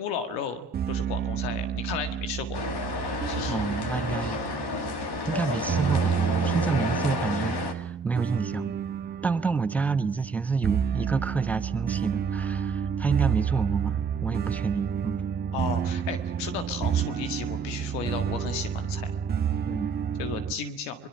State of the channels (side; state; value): left; quieter; 4.1 dB